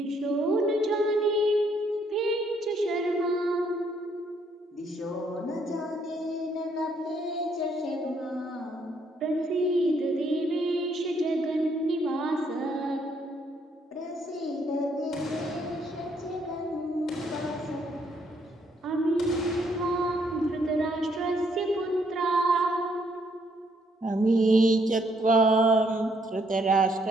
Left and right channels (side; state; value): both; normal; correlation 0.70